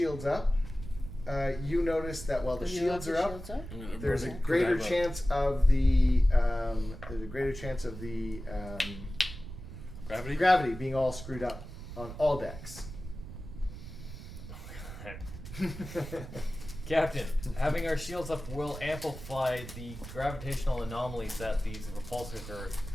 up, you notice that while the Do you have shields the are up, shields up? I'm gonna there's a roll- greater I have a chance of the gravity. gravity being all screwed up on all decks. Captain, having our shields up will amplify the gravitational anomalies that these repulsors are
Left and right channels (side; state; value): right; noise; rumble, 11 dB below the sound